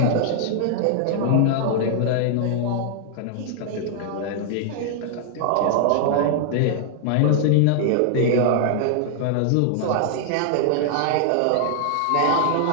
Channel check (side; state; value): both; different; correlation -0.01